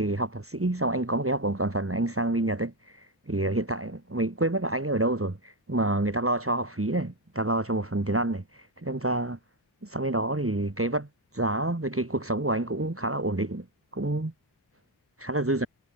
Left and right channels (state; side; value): normal; both; correlation 0.08